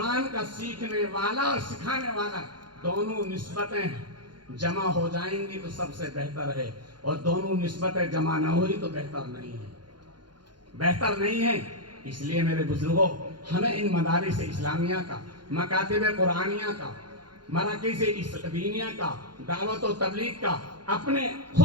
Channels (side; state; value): left; late; 0.71 ms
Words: کا سیکھنے والا اور سکھانے والا، دونوں نسبتیں جمع ہو جائیں گی تو سب سے بہتر ہے، اور دونوں نسبتیں جمع نہ ہوئی تو بہتر نہیں ہے۔ اس لیے میرے بزرگوں، ہمیں ان مدارس اسلامیہ کا، مکاتب قرآنیہ کا، مراکز دینیہ کا، دعوت و تبلیغ کا، اپنے